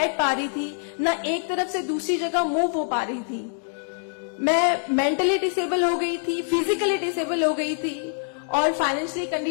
पा रही थी, ना एक तरफ से दूसरी जगह मूव हो पा रही थी। मैं मेंटली डिसेबल हो गई थी, फिजिकली डिसेबल हो गई थी और फाइनेंशियली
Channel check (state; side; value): silent; right; digital silence